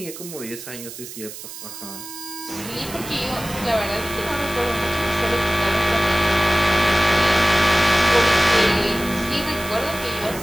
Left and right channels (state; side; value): noise; right; hiss, 12 dB below the sound